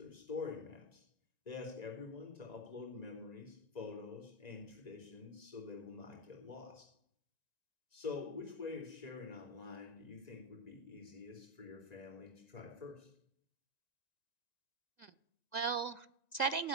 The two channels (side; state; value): right; late; 1.9 ms